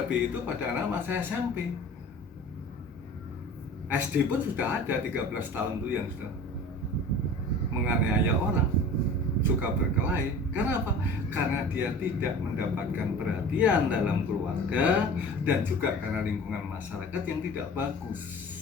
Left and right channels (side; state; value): both; normal; correlation 0.40